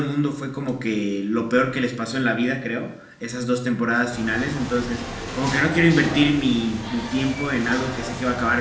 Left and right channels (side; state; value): both; identical; correlation 1.00